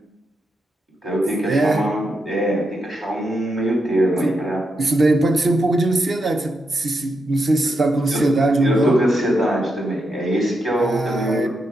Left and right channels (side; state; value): both; normal; correlation 0.84